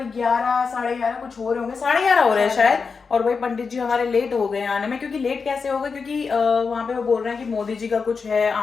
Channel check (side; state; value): right; quieter; 5.1 dB